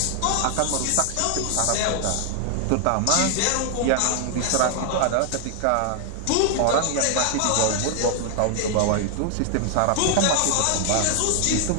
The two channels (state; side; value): different; both; correlation 0.00